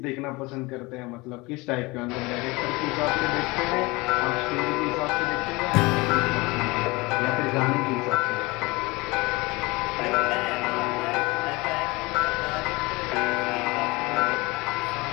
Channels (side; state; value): right; quieter; 23.8 dB